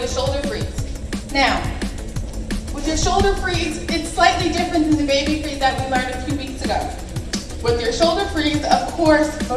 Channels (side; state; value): both; identical; correlation 1.00